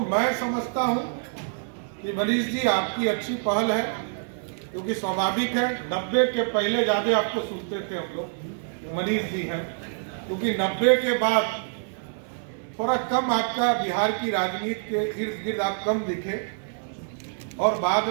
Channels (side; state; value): left; silent; 61 dB below the other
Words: मैं समझता हूं कि मनीष जी आपकी अच्छी पहल है, क्योंकि स्वाभाविक है 90 के पहले ज्यादा आपको सुनते थे हम लोग, मनीष जी हैं, क्योंकि 90 के बाद थोड़ा कम आपका बिहार की राजनीति के इर्द गिर्द आप कम दिखे, और बाद